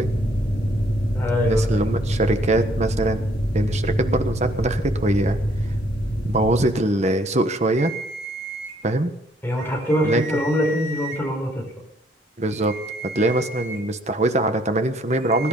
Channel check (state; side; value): normal; both; correlation 0.65